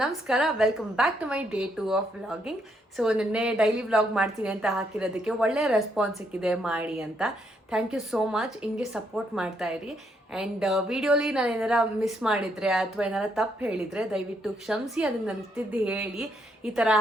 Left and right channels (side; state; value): both; normal; correlation 0.75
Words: ನಮಸ್ಕಾರ. Welcome back to my day 2 of vlogging. So ನಿನ್ನೆ ಡೈಲಿ ವ್ಲಾಗ್ ಮಾಡ್ತೀನಿ ಅಂತ ಹಾಕಿರೋದಕ್ಕೆ ಒಳ್ಳೆ ರೆಸ್ಪಾನ್ಸ್ ಸಿಕ್ಕಿದೆ ಮಾಡಿ ಅಂತ. Thank you so much. ಹಿಂಗೆ ಸಪೋರ್ಟ್ ಮಾಡ್ತಾ ಇರಿ. ಆ್ಯಂಡ್ ವಿಡಿಯೋಲಿ ನಾನು ಏನಾರ ಮಿಸ್ ಮಾಡಿದರೆ ಅಥವಾ ಏನಾರ ತಪ್ಪು ಹೇಳಿದರೆ ದಯವಿಟ್ಟು ಕ್ಷಮಿಸಿ. ಅದನ್ನು ನನಗೆ ಹೇಳಿ ಈ ಥರ